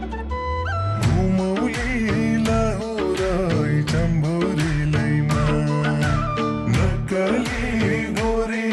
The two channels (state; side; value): identical; both; correlation 1.00